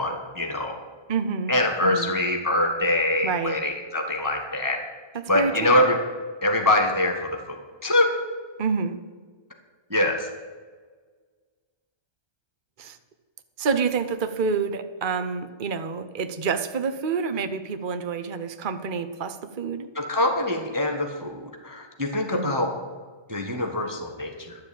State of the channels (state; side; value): late; left; 1.3 ms